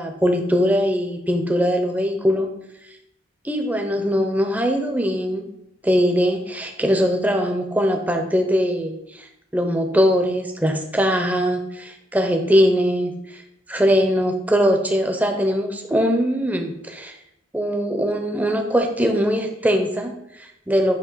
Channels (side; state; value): both; normal; correlation 0.80